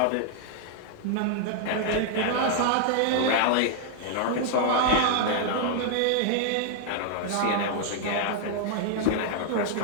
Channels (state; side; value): different; both; correlation 0.00